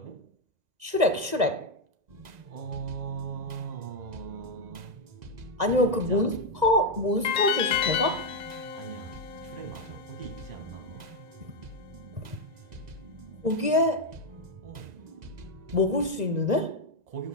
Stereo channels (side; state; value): left; late; 1.9 ms